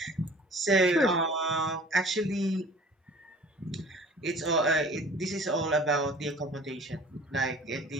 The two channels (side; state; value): both; normal; correlation 0.47